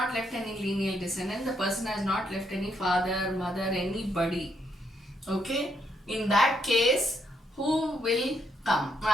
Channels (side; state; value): both; normal; correlation 0.76